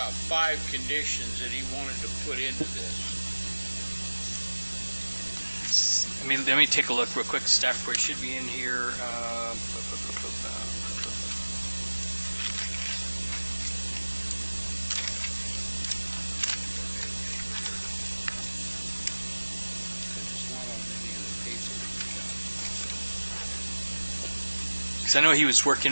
5 conditions that he wanted to put into this? Let me take a look real quick. Staff report should be in here. It's not on any of the paper. Because I know he was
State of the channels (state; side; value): inverted; both; correlation -1.00